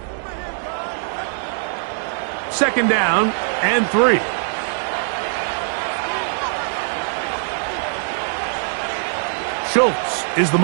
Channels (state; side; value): silent; left; digital silence